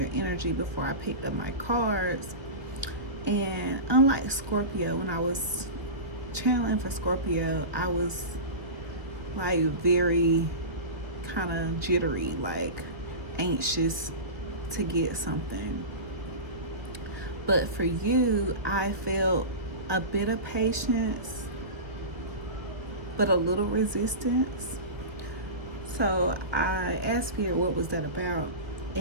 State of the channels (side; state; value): left; late; 1.1 ms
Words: energy before I picked up my cards, and unlike Scorpio, when I was channeling for Scorpio, I was like very kind of jittery, like anxious to get something. But for you, I felt a bit of patience, but a little resistance. So I asked Spirit, what was that about?